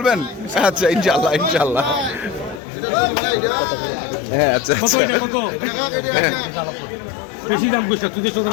আচ্ছা ইনশাল্লাহ ইনশাল্লাহ। হ্যাঁ আচ্ছা কত এটা কত? বেশি দাম কইছ তুই তো দাম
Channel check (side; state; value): right; drops out; at 2.6 s